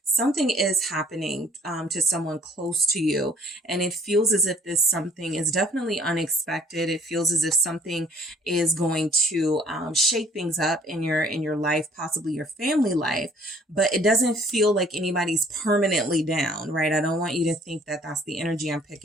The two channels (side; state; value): both; normal; correlation 0.57